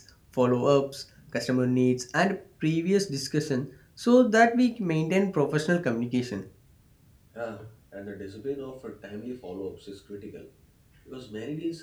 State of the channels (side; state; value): both; identical; correlation 1.00